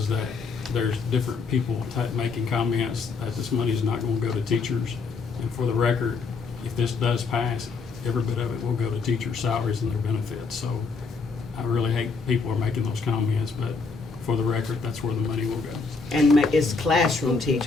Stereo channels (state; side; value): quieter; right; 4.6 dB